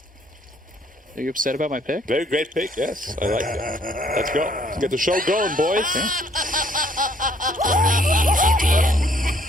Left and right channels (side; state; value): both; normal; correlation 0.64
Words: Are you upset about my pick? Very great pick, yes. I like it. Let's go. Let's get the show going, boys.